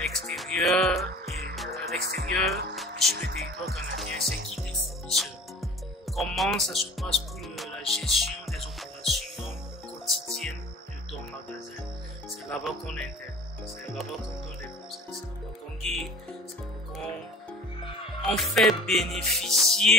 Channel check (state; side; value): normal; both; correlation 0.44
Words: et sur le territoire canadien. C'est qui tes fournisseurs? Comment ça se passe pour la gestion des opérations quotidiennes de ton magasin? C'est là-bas qu'on intègre, c'est là-bas qu'on donne des conseils, c'est là-bas qu'on guide, c'est là-bas qu'on fait